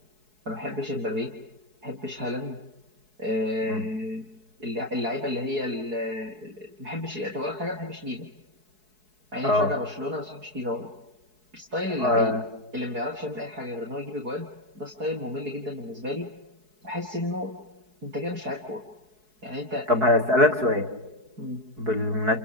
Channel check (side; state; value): left; late; 4.7 ms